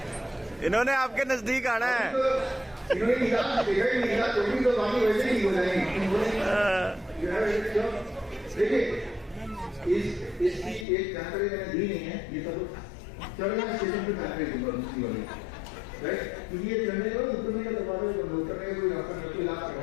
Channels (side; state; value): right; drops out; at 10.9 s